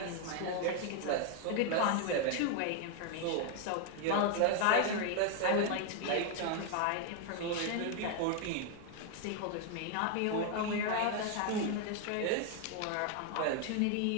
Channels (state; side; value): different; both; correlation 0.00